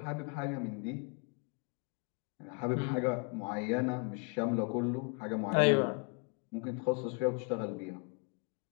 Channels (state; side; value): quieter; right; 36.0 dB